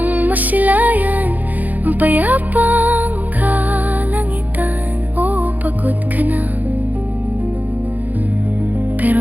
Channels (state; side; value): late; left; 0.081 ms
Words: masilayan ang payapang kalangitan. O pagod ka na,